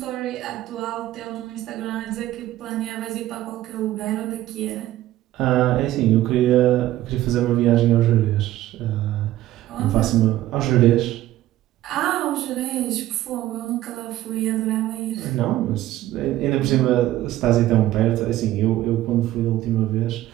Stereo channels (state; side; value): quieter; left; 14.5 dB